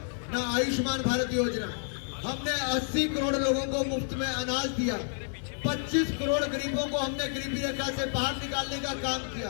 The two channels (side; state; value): right; silent; digital silence